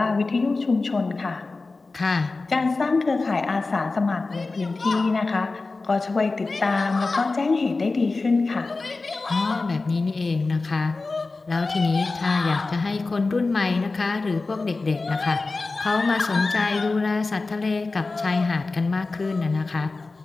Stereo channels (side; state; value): right; quieter; 3.6 dB